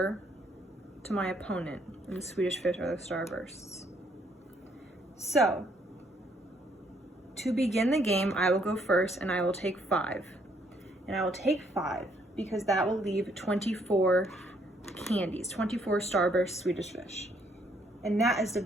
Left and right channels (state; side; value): normal; both; correlation 0.69